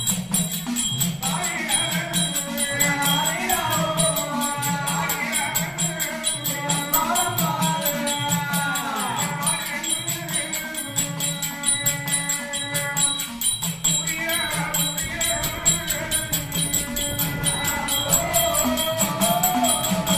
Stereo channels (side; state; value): both; identical; correlation 1.00